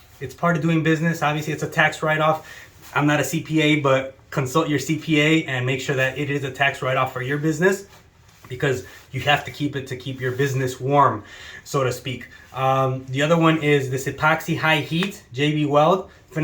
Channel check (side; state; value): both; identical; correlation 1.00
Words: it's part of doing business. Obviously it's a tax write-off. I'm not a CPA, but consult your CPA and make sure that it is a tax write-off for your business, because you have to keep it to keep your business warm, so to speak. The other one is this Epoxy High Heat JB Weld.